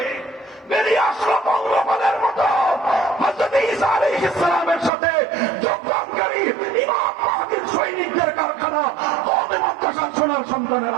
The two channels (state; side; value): drops out; left; at 4.9 s